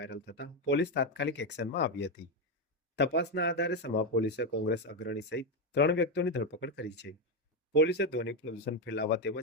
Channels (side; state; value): both; normal; correlation 0.08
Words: થતા પોલીસ તાત્કાલિક એક્શનમાં આવી હતી। તપાસના આધારે સમા પોલીસે કોંગ્રેસ અગ્રણી સહિત 3 વ્યક્તિઓની ધરપકડ કરી છે। પોલીસે ધ્વનિ પ્રદૂષણ ફેલાવવા